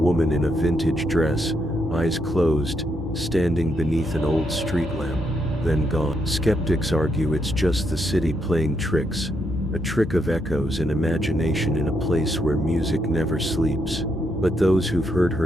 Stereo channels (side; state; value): both; normal; correlation 0.78